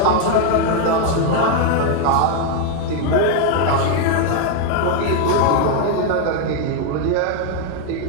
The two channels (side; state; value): both; different; correlation 0.01